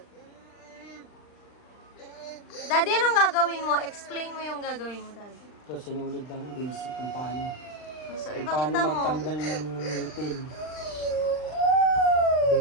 Daddy, anong gagawin mo? Explain mo yung gagawin mo, Daddy. Ito, sinulid lang basic kung paano. So, Kung ipakita paano mo. magtanggal ng ngipin.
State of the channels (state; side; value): late; right; 39 ms